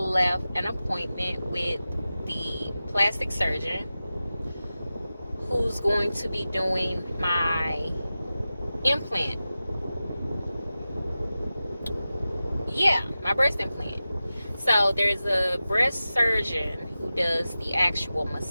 an appointment with the plastic surgeon who's going to be doing my implant. Yeah, my breast implant. So there's a breast surgeon who does the actual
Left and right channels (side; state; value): both; inverted; correlation -0.95